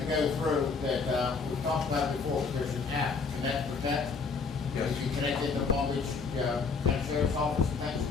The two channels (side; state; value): right; quieter; 4.8 dB